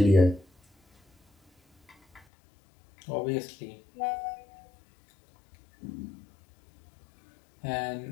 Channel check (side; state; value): right; drops out; at 2.2 s